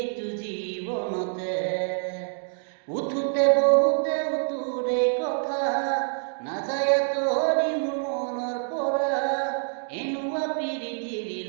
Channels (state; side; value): silent; left; digital silence